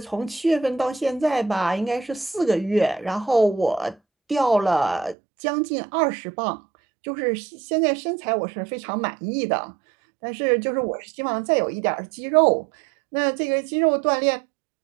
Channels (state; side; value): drops out; left; at 5.2 s